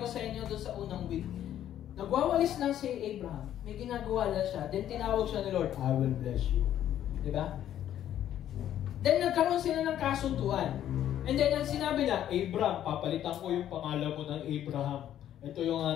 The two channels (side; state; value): right; quieter; 11.2 dB